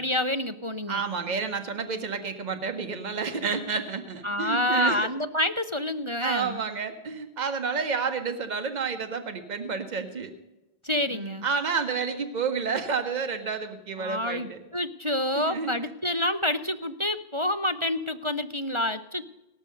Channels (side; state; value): left; late; 1.4 ms